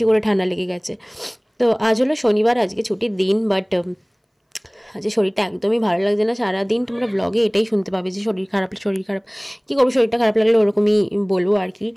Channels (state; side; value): identical; both; correlation 1.00